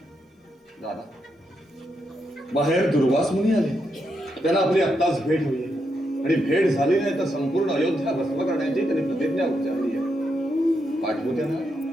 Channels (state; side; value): normal; both; correlation 0.82